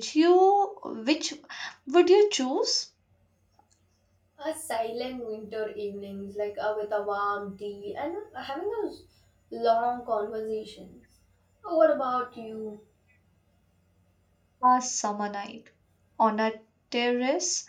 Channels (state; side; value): identical; both; correlation 1.00